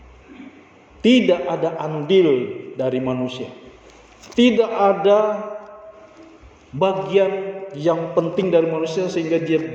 Tidak ada andil dari manusia. Tidak ada bagian yang penting dari manusia sehingga dia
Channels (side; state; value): both; identical; correlation 1.00